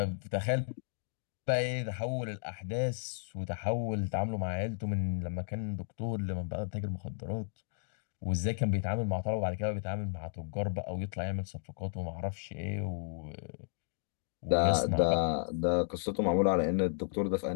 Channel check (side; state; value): right; silent; digital silence